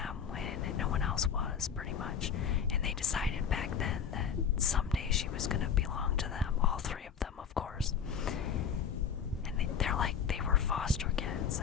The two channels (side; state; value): right; quieter; 7.3 dB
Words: when no one else was, pretty much. And they decided back then that someday she was going to belong to them, all three of them, of course. And they were foster kids,